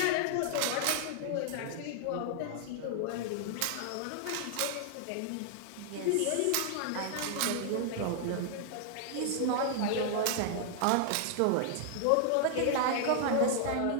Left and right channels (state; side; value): different; both; correlation -0.01